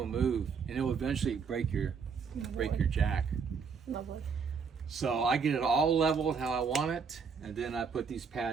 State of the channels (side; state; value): left; quieter; 5.8 dB